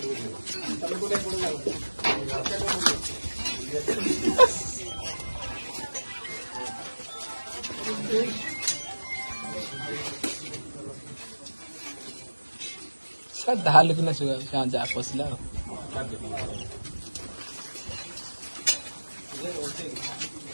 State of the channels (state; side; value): inverted; both; correlation -1.00